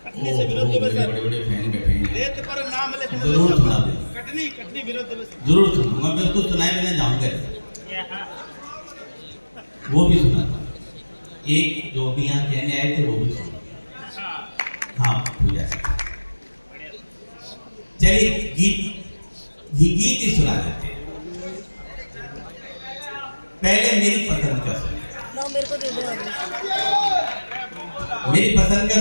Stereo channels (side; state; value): both; inverted; correlation -1.00